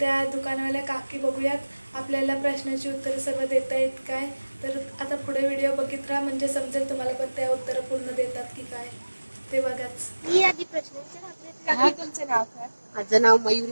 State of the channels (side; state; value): both; inverted; correlation -1.00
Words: दुकानवाल्या काकी बघूयात आपल्याला प्रश्नाची उत्तरं सर्व देता येत काय। तर आता पुढे व्हिडिओ बघित राहा, म्हणजे समजेल तुम्हाला पण त्या उत्तरं पूर्ण देतात की काय ते बघाच। मी आधी प्रश्न विचारते, काकी तुमचं नाव काय? माझं नाव